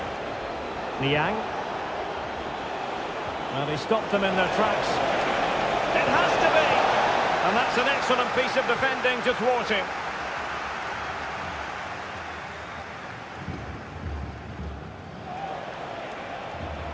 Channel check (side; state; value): both; identical; correlation 1.00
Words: Niang. Well, he stopped them in their tracks. It has to be! And that's an excellent piece of defending to thwart him.